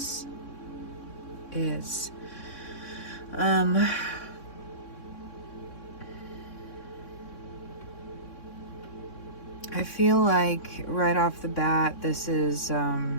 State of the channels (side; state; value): right; late; 3.6 ms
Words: is. I feel like right off the bat, this is a